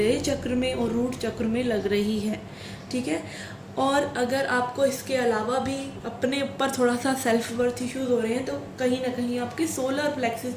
चक्र में और रूट चक्र में लग रही है। ठीक है, और अगर आपको इसके अलावा भी अपने ऊपर थोड़ा सा सेल्फ वर्थ इश्यूज़ हो रहे हैं तो कहीं ना कहीं आपके सोलर प्लेक्सस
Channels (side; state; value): both; identical; correlation 1.00